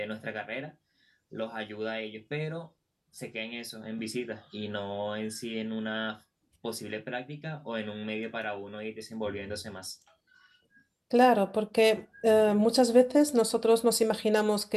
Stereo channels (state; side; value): identical; both; correlation 1.00